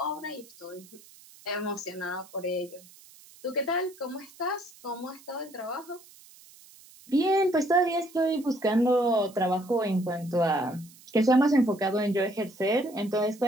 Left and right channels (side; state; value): right; noise; hiss, 23 dB below the sound